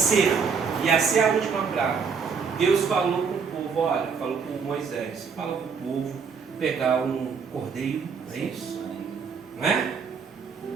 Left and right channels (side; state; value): left; quieter; 5.9 dB